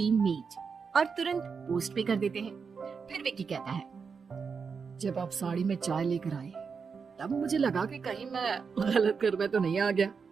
मीट और तुरंत पोस्ट पे कर देते हैं। फिर विकी कहता है, जब आप साड़ी में चाय लेकर आए तब मुझे लगा कि कहीं मैं गलत कर में तो नहीं आ गया।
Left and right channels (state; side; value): quieter; left; 5.6 dB